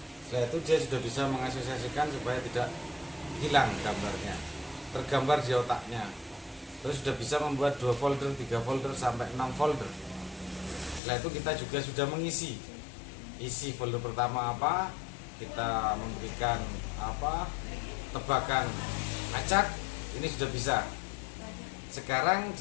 Setelah itu dia sudah bisa mengasosiasikan supaya tidak hilang gambarnya, tergambar di otaknya. Terus sudah bisa membuat 2 folder, 3 folder, sampai 6 folder. Setelah itu kita juga sudah mengisi isi folder pertama apa, kita memberikan apa, tebakan acak, ini sudah bisa. Sekarang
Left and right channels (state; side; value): drops out; right; at 11.0 s